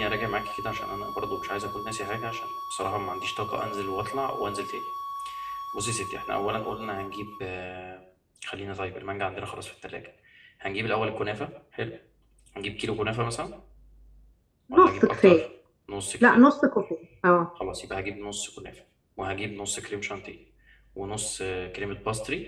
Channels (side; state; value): both; identical; correlation 1.00